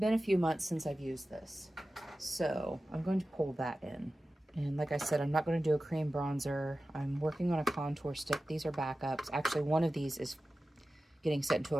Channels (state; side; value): normal; both; correlation 0.95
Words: a few months since I've used this. So I'm going to pull that in. And like I said, I'm not going to do a cream bronzer. I'm working on a contour stick. These are backups. Actually, one of these is getting sent to